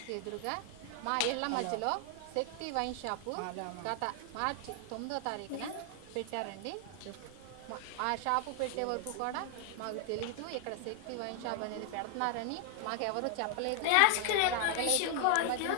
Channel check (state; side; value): different; both; correlation 0.00